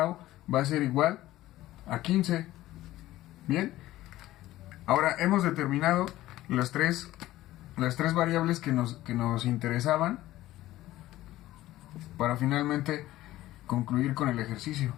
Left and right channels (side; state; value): right; quieter; 15.6 dB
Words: va a ser igual a 15. Bien, ahora hemos determinado las tres variables que nos interesaban para finalmente concluir con el ejercicio.